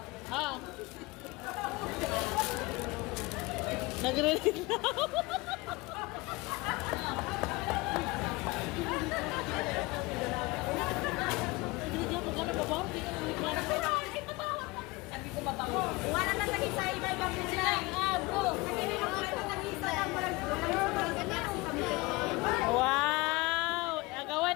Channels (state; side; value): quieter; right; 23.3 dB